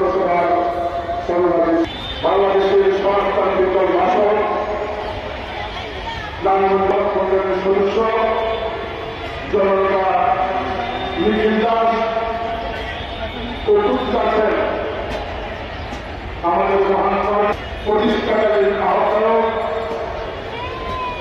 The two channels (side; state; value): both; identical; correlation 1.00